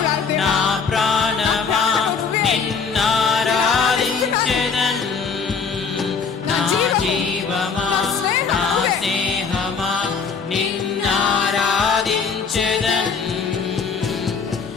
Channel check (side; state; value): right; quieter; 5.6 dB